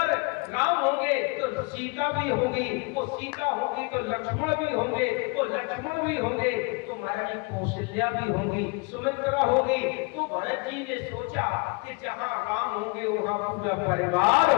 राम होंगे तो सीता भी होगी, वो सीता होगी तो लक्ष्मण भी होंगे, वो लक्ष्मण भी होंगे तो महारानी कौशल्या भी होंगी, सुमित्रा होगी। तो भरत जी ने सोचा कि जहां राम होंगे वहां पूरा परिवार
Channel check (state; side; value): quieter; right; 29.6 dB